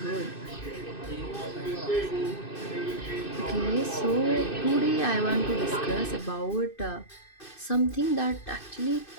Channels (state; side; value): late; right; 2.6 ms